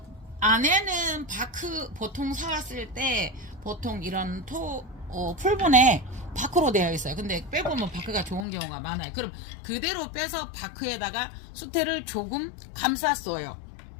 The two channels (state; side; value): drops out; right; at 8.5 s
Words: 안에는 바크 보통 사왔을 때 보통 이런 풀분에 바크로 되어 있어요. 근데 빼보면 바크가 좋은 경우가 많아요. 그럼 그대로 빼서 바크에다가 수태를 조금 감쌌어요.